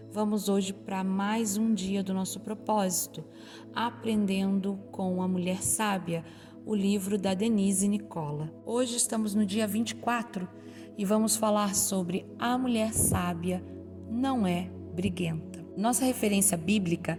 Vamos hoje para mais um dia do nosso propósito, Aprendendo com a Mulher Sábia, o livro da Denise Nicola. Hoje estamos no dia 24 e vamos falar sobre a mulher sábia não é briguenta. Nossa referência bíblica,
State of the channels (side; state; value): both; identical; correlation 1.00